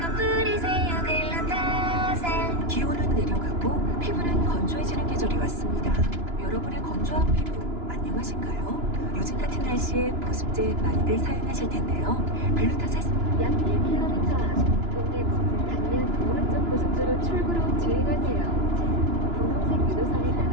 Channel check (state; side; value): late; left; 2.9 ms